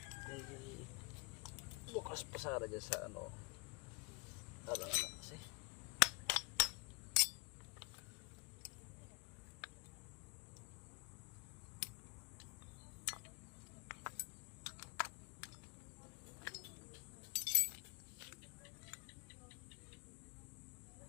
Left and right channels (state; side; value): quieter; right; 29.5 dB